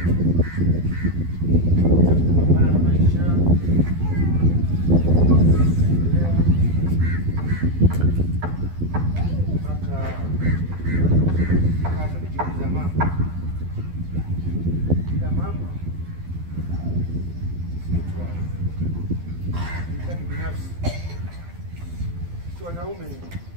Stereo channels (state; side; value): late; left; 12 ms